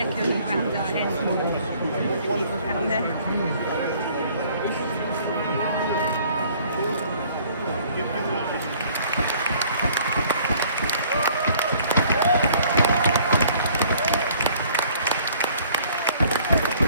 around our heads and people down there.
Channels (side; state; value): both; inverted; correlation -0.57